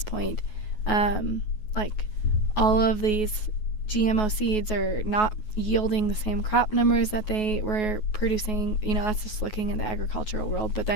point. Like, all of these GMO seeds are not yielding the same crop numbers that they were producing. That's just looking in the agricultural world. But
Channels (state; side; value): late; right; 9.4 ms